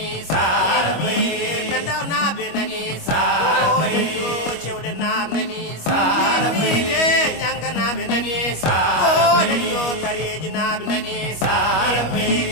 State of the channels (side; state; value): right; late; 25 ms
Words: sarabe pendaw nabe nani sarabe o lelio chewle nab nani sarabe nyanga nabe nani sarabe o lelio tareji nabe nani sarabe